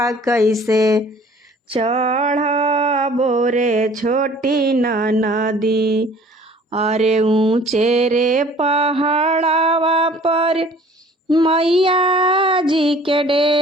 कैसे चढ़बो रे छोटी ननदी। अरे ऊंचे रे पहाड़वा पर मैया जी के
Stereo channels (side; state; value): both; normal; correlation 0.51